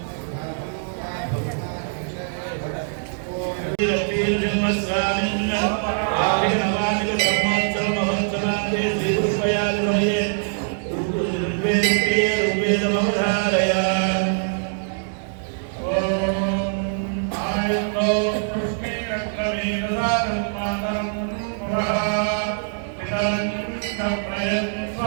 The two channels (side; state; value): left; silent; digital silence